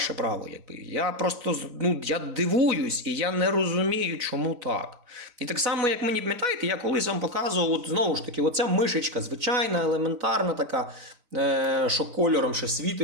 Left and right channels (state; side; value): late; left; 4.0 ms